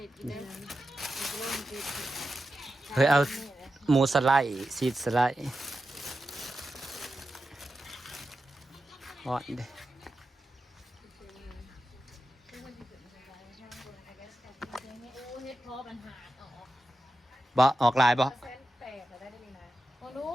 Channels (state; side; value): normal; both; correlation 0.90